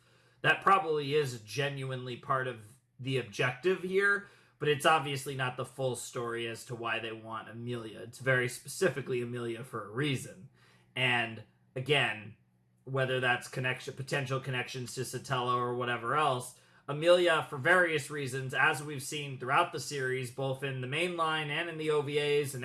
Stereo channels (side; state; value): both; identical; correlation 1.00